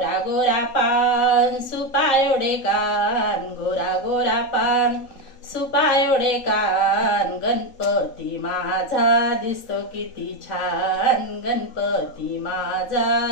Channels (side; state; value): right; late; 3.8 ms